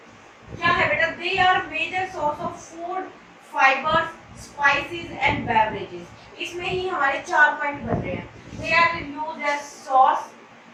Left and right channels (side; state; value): both; identical; correlation 1.00